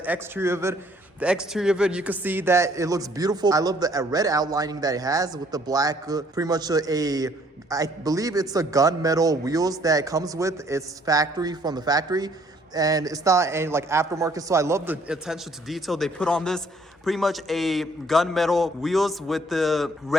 exterior of it. The exterior of it, you can see that it looks beautiful. I love the red outlining that it has with the black, pretty much I believe it's a gunmetal wheels that it comes with. It's from the factory. And it's not any like aftermarket, so I love the attention to detail they put on this. Pretty much a gunmetal wheels with the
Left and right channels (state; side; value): normal; both; correlation 0.62